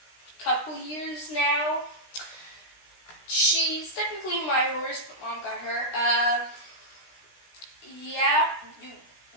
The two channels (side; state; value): right; late; 16 ms